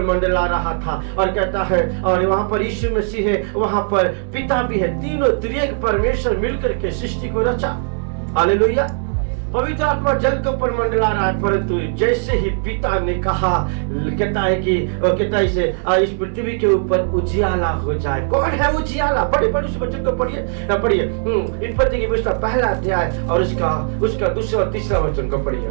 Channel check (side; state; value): left; silent; 63 dB below the other